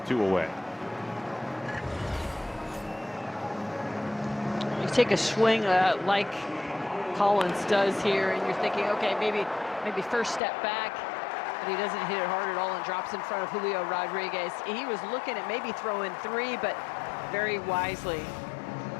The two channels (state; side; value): drops out; right; at 10.4 s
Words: 2 away. You take a swing like Collins does here, and you're thinking, okay, maybe first step back, but he doesn't hit it hard at all and drops in front of Julio Rodriguez. He was looking at maybe throwing 3, but very wisely